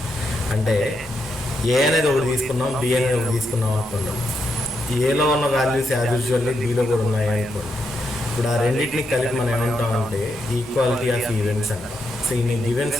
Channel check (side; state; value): both; normal; correlation 0.82